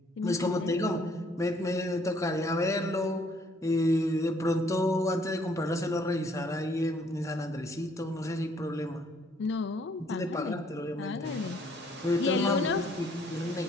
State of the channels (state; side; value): normal; both; correlation 0.64